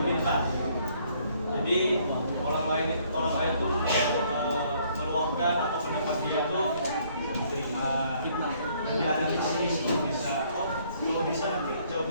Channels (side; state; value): both; inverted; correlation -0.64